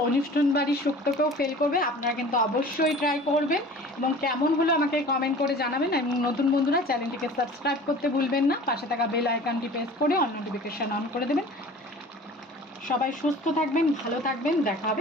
অনুষ্ঠান বাড়ির শুক্তোকেও ফেল করবে। আপনারা কিন্তু অবশ্যই ট্রাই করবেন এবং কেমন হলো আমাকে কমেন্ট করে জানাবেন। এবং নতুন বন্ধুরা চ্যানেলটিকে সাবস্ক্রাইব করতে ভুলবেন না, পাশে থাকা বেল আইকনটি প্রেস করে অল নোটিফিকেশন অন করে দেবেন। সবাই সুস্থ থাকবেন, ভালো থাকবেন, দেখা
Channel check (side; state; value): both; normal; correlation 0.43